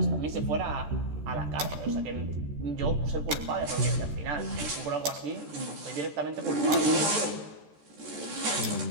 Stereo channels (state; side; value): late; left; 13 ms